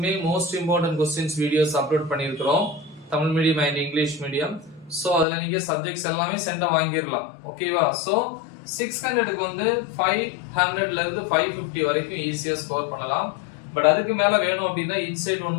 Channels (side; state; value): right; drops out; at 5.2 s